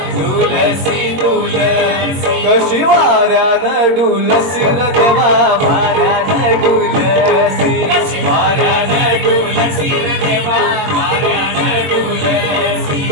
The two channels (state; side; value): late; left; 22 ms